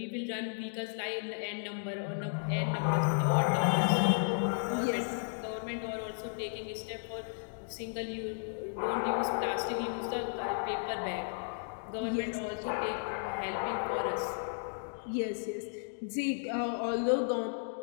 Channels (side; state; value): right; silent; digital silence